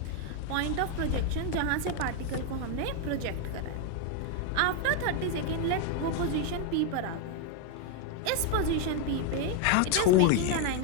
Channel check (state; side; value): different; both; correlation 0.01